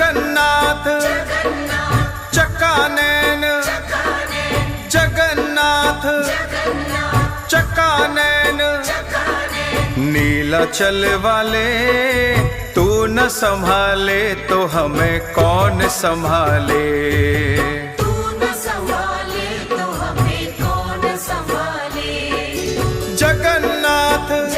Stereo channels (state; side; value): identical; both; correlation 1.00